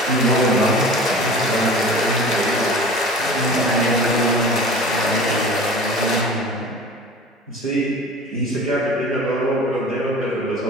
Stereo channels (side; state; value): both; normal; correlation 0.39